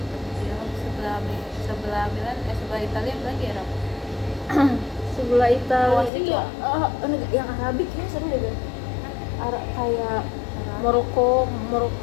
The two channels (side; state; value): right; drops out; at 6.1 s